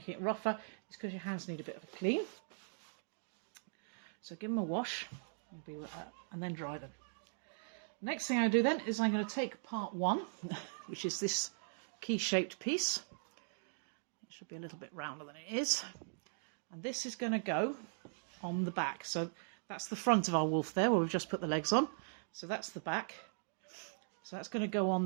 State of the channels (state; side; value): silent; left; digital silence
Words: it rougher, it's because your hands need a bit of a clean. So give them a wash, and then dry them. Next thing I do then is I'm going to take part one, which is this key-shaped piece. It should be a little bit rounder than it is. And this is going to go on the back. So that's the front of our wolf there, where we've just put the legs on. So that's the back. So that's going to go on